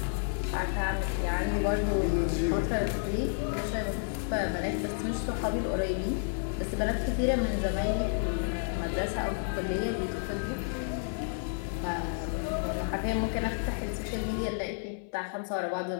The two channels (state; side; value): silent; right; 56 dB below the other